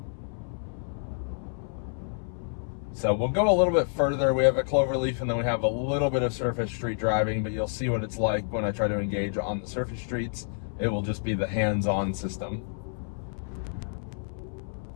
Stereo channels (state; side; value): silent; right; 59 dB below the other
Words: So we'll go a little bit further. We have a cloverleaf, and then we have a little bit of surface street driving, but you'll see what it's like when I try to engage on the surface streets. It will just be the hands-on system.